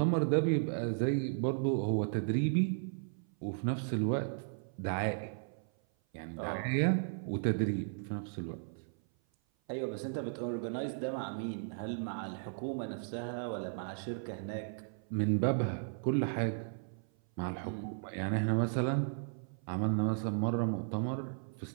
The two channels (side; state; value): left; silent; 54 dB below the other